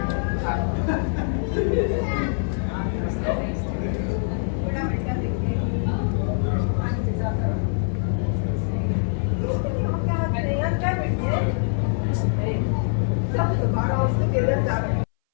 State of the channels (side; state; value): right; silent; 60 dB below the other